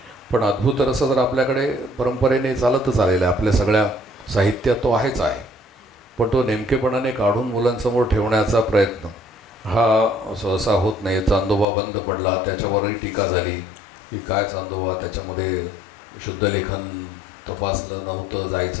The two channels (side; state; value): right; drops out; at 11.7 s